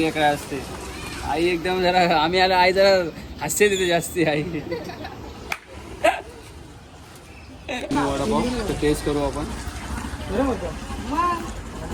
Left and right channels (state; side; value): identical; both; correlation 1.00